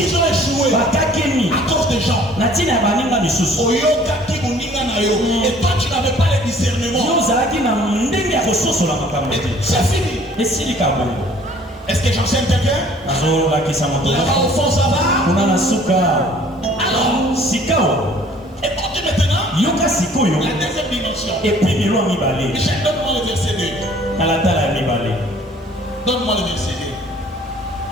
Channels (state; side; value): normal; both; correlation 0.55